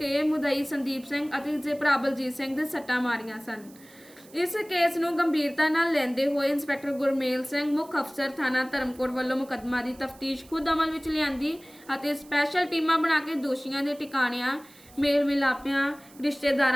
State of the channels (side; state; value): right; noise; hiss, 24 dB below the sound